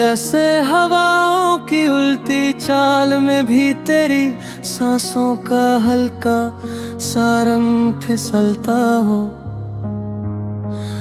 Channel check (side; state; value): both; identical; correlation 1.00